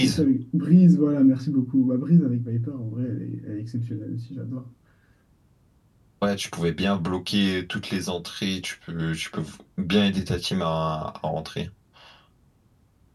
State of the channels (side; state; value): both; identical; correlation 1.00